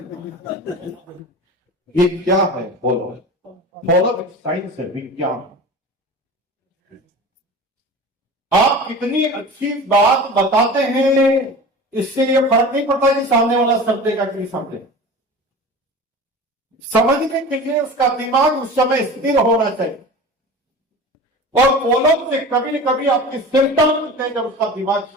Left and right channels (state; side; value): normal; both; correlation 0.35